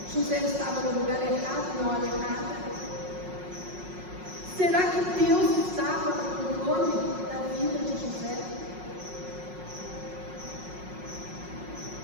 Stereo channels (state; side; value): late; left; 5.5 ms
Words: José estava no lugar errado, na hora errada? Será que Deus estava no controle da vida de José?